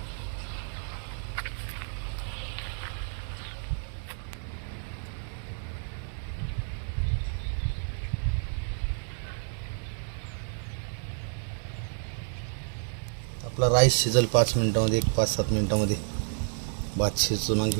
आपला राईस शिजेल 5 मिनिटामध्ये, 5-7 मिनिटामध्ये भात शिजवून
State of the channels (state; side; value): silent; left; 58 dB below the other